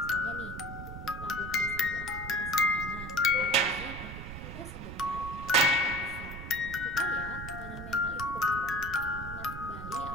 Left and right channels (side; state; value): right; noise; rumble, 9 dB below the sound